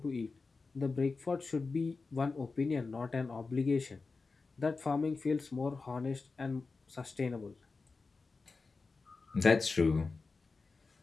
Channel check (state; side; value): quieter; right; 4.1 dB